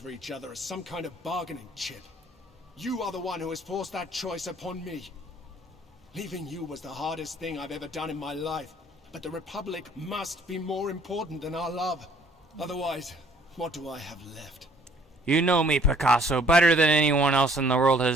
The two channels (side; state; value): both; normal; correlation 0.58